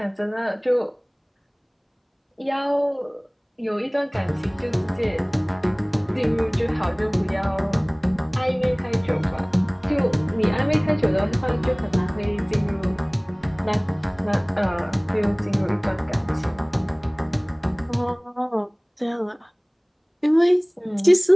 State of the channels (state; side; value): identical; both; correlation 1.00